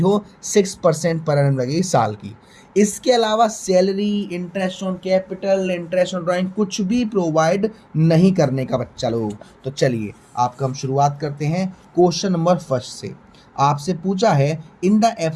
6% पर एनम लगेगी साल की। इसके अलावा salary, interest on capital, interest on drawing कुछ भी प्रोवाइड नहीं करने का बच्चा लोग। तो चलिए आपका हम शुरुआत करते हैं क्वेश्चन नंबर फर्स्ट से। आपसे पूछा है, in the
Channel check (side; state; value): both; identical; correlation 1.00